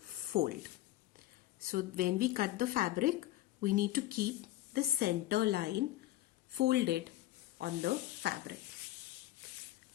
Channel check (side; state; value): right; quieter; 15.5 dB